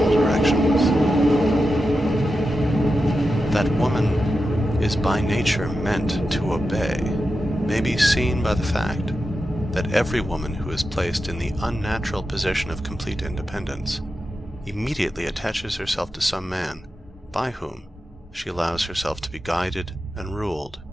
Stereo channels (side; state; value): both; normal; correlation 0.90